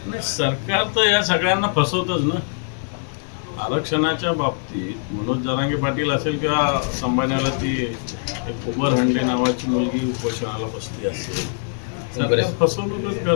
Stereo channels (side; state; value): right; silent; digital silence